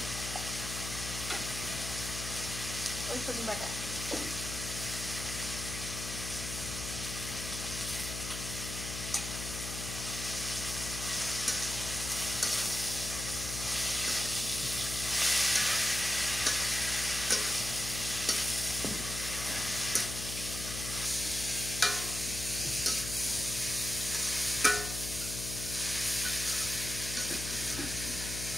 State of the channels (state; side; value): noise; left; hum, 6 dB below the sound